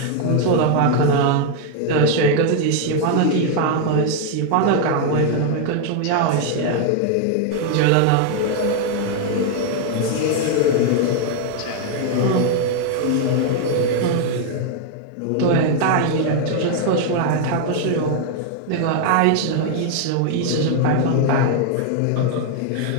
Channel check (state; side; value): different; both; correlation 0.00